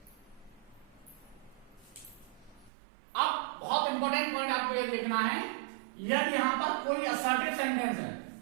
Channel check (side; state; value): left; drops out; at 2.7 s